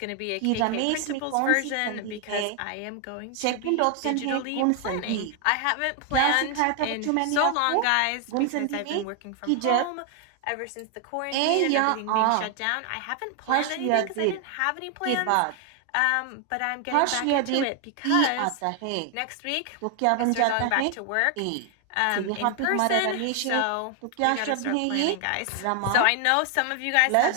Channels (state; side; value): different; both; correlation 0.00